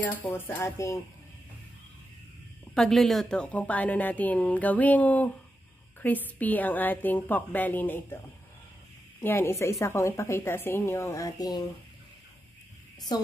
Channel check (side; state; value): both; normal; correlation 0.88